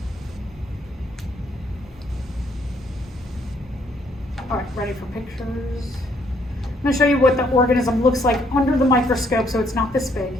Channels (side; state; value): both; normal; correlation 0.68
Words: All right, ready for pictures? I'm gonna show you what the organism looks like under the microscope, so it's not this big.